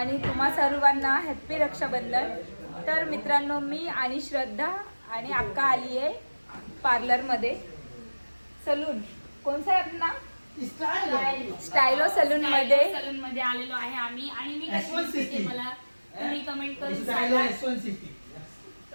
तुम्हा सर्वांना हॅप्पी रक्षाबंधन. तर मित्रांनो, मी आणि श्रद्धा आणि अक्का आली आहे पार्लरमध्ये. सलून कोणसा आहे आपला? स्टायलो सलून मध्ये आलेलो आहे आम्ही. आणि मी कशी दिसते मला तुम्ही कमेंट करून सांगा.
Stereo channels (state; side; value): inverted; both; correlation -1.00